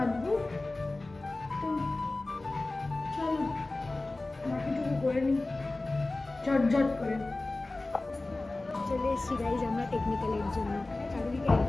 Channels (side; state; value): right; quieter; 3.0 dB